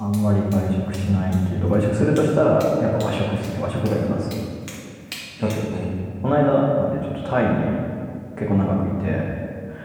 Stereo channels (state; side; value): identical; both; correlation 1.00